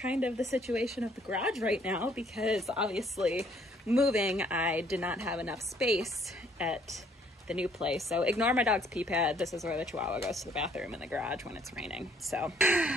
of the situation of the garage right now because obviously moving I did not have enough space at the new place. So ignore my dog's pee pad. This is where the Chihuahua goes to the bathroom in the garage when it's raining. So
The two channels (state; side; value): normal; both; correlation 0.63